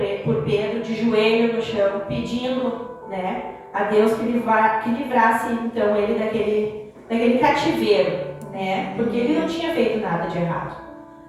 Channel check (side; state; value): both; identical; correlation 1.00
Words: de joelho no chão, pedindo, né, a Deus que livrasse então ele daquele cativeiro, né, porque ele não tinha feito nada de errado.